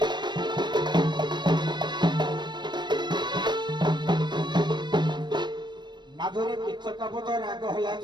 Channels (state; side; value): late; left; 0.22 ms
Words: ମାଧୁରୀ କିଚକାପଦ ରାଗ ହେଲା